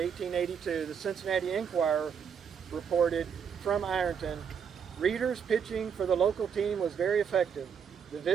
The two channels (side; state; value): left; quieter; 7.2 dB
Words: the Cincinnati Enquirer reported from Ironton, Reader's pitching for the local team was very effective, the